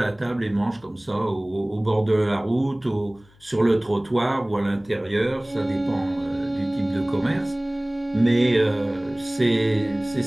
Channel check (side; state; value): left; noise; hum, 29 dB below the sound